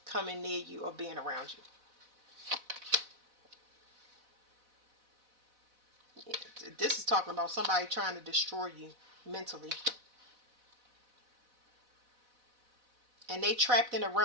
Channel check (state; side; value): late; left; 4.0 ms